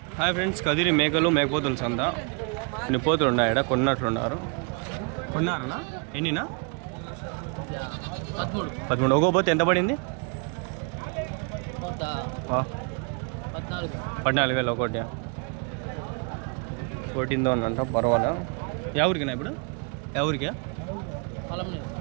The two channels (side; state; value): left; quieter; 37.2 dB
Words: హాయ్ ఫ్రెండ్స్, కదిరి మేకలు మేకపోతుల సంత. ఇన్ని పోతులు ఉన్నాయట, కొన్నట్లున్నారు. కొన్నారనా? ఎన్నినా? 13. ఒక్కో పోతే ఎంత పడింది? 14,000 ఒకటి. 14,000 అంట. పర్వాలే. ఎవరికినా ఇప్పుడు? ఎవరికా?